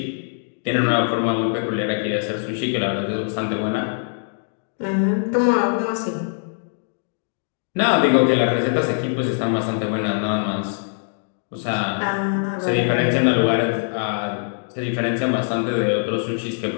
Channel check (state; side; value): silent; right; digital silence